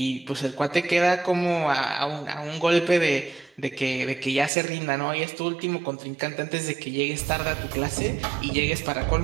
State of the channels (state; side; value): drops out; left; at 4.5 s